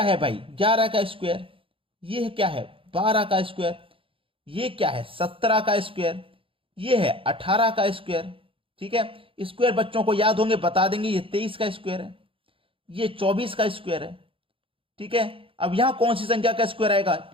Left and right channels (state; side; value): late; left; 0.26 ms